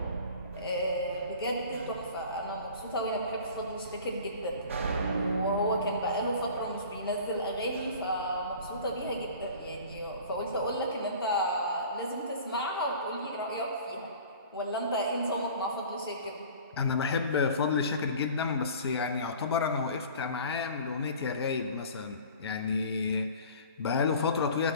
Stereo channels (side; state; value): both; inverted; correlation -0.43